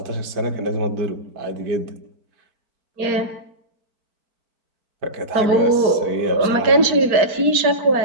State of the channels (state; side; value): late; left; 4.5 ms